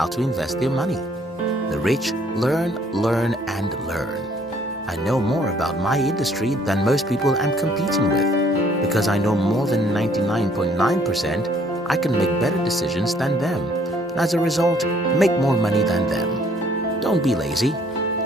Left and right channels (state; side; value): normal; both; correlation 0.62